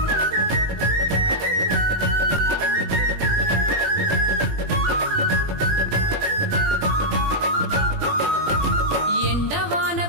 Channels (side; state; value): left; late; 20 ms